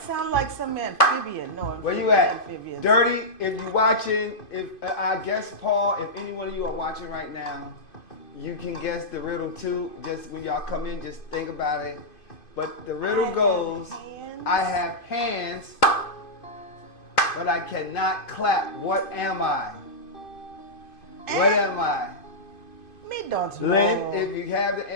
sounds like some amphibian. No, where you at? Amphibian. Dirty, if you're watching, if I guess Paul, if any one of you are watching right now, you can guess the riddle too. Just when y'all come in, just think about it. But the riddle goes, I have hands, but I cannot clap. What am I? What am I? Me don't know. Lynn, if you have the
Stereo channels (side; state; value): right; late; 2.5 ms